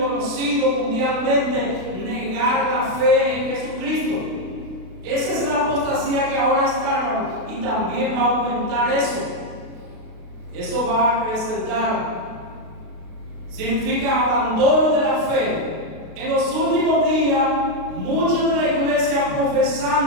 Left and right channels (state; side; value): late; left; 32 ms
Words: mundialmente negar la fe en Jesucristo. Esa es la apostasía que ahora está, hermano, y también va a aumentar eso. Eso va a acrecentar. Significa abandono de la fe. En los últimos días, muchos de la iglesia